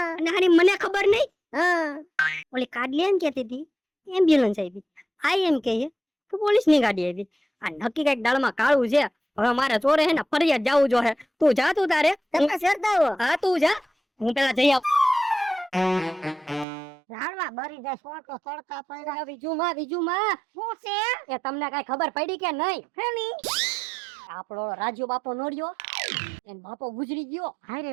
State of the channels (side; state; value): left; drops out; at 16.7 s